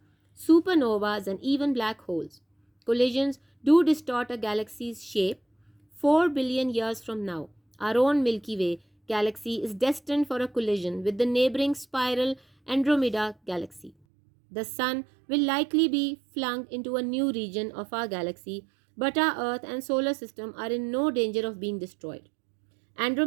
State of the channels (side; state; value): left; drops out; at 13.9 s